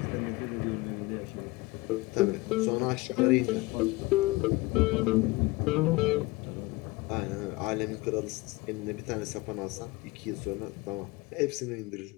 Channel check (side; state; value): right; quieter; 22.3 dB